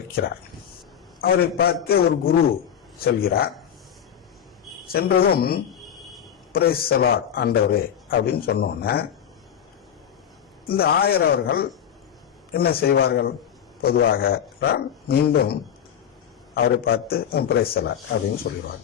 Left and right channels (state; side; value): quieter; right; 8.9 dB